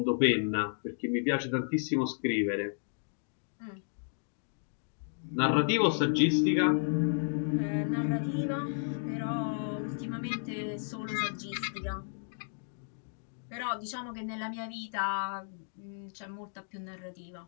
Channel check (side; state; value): right; silent; digital silence